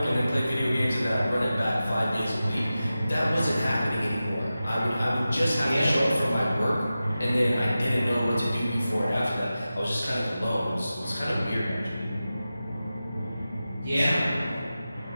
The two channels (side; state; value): both; inverted; correlation -0.94